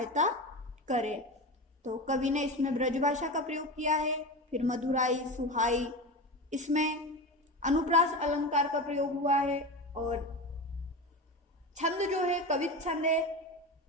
करें। तो कवि ने इसमें ब्रजभाषा का प्रयोग किया है, फिर मधुराई, सुहाई, इसमें अनुप्रास अलंकार का प्रयोग हुआ है, और छंद जो है कवित छंद है,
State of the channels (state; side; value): normal; both; correlation 0.24